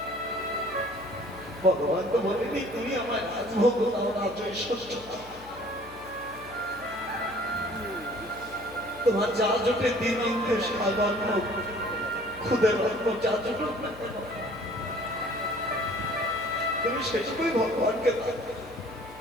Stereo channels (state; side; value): noise; left; hum, 20 dB below the sound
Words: ভগবান তো বলেনি তুমি আমার রাজভোগ দাও, রাজ্য ঐশ্বর্য দাও। তোমার যা জোটে দিন অন্তে সাধারণ খুদের অন্ন যা জোটে তুমি সেটুকুই ভগবানকে দাও।